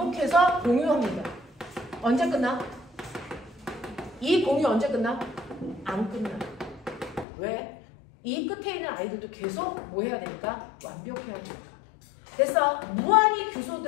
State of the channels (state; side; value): drops out; right; at 7.2 s